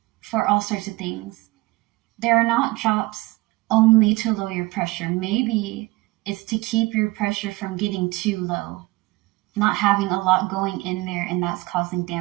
for all sorts of things. There are not drops only to lower your pressure. Maybe it's to keep your pressure from getting too low, not having a lot going in there, and that's causing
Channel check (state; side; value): quieter; left; 21.2 dB